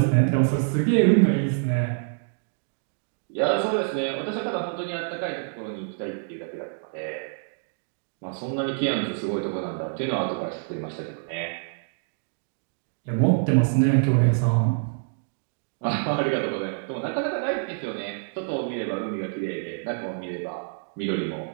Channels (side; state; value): left; silent; digital silence